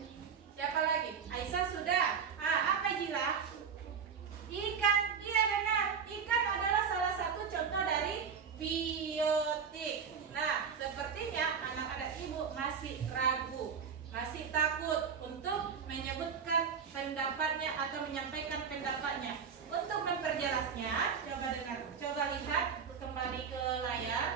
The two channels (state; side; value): quieter; left; 6.6 dB